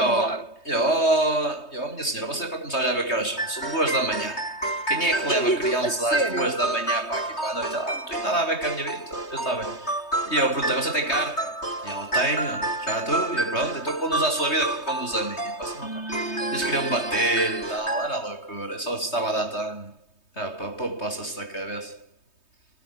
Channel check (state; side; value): late; right; 3.2 ms